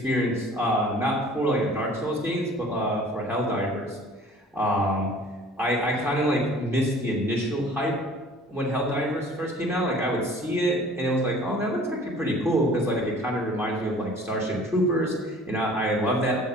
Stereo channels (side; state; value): both; normal; correlation 0.49